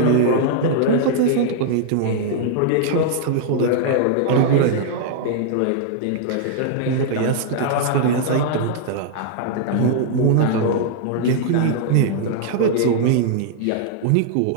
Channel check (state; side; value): different; both; correlation -0.01